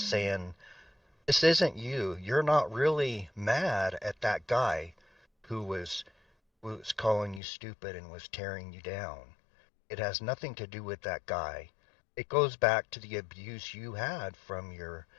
saying, this isn't you. You're not really mad at that guy who was calling you stupid and was tearing you down. It has nothing to do with that guy. It goes back to the abuse you had from your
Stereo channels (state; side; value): drops out; right; at 7.4 s